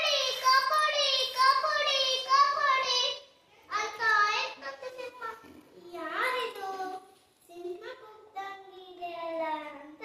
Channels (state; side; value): identical; both; correlation 1.00